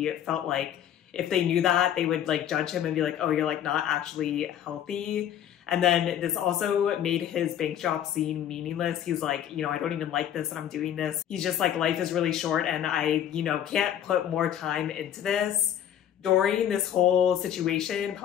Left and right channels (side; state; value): right; quieter; 10.3 dB